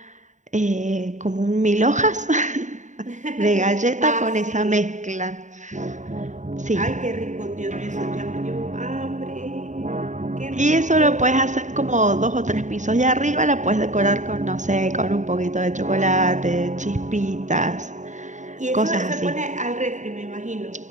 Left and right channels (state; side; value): late; left; 0.36 ms